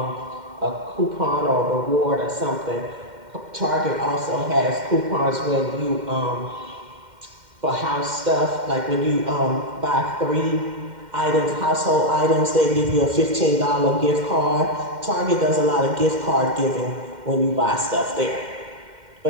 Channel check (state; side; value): late; left; 2.1 ms